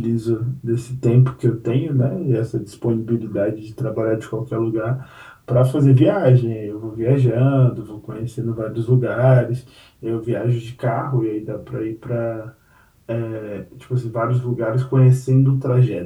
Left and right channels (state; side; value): identical; both; correlation 1.00